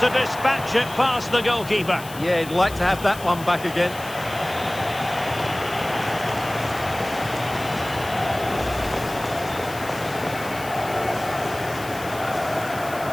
To dispatch it past the goalkeeper. Yeah, he'd like to have that one back again.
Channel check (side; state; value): left; noise; hiss, 15 dB below the sound